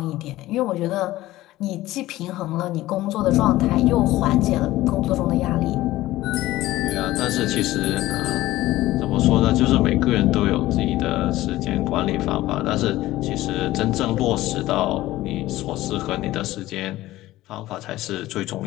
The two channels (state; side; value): quieter; right; 16.4 dB